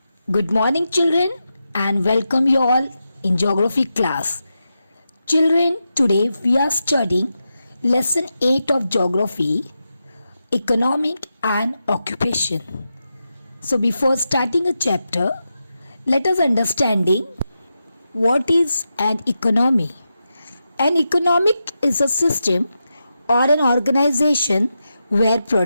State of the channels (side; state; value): both; inverted; correlation -0.88